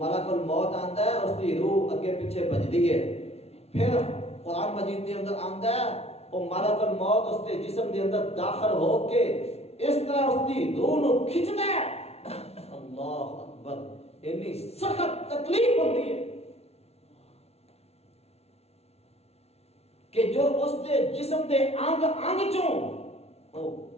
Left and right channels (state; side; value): late; right; 0.30 ms